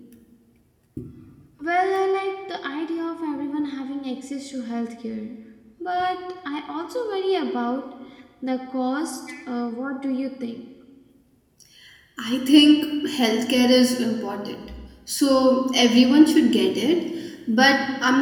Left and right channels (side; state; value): both; identical; correlation 1.00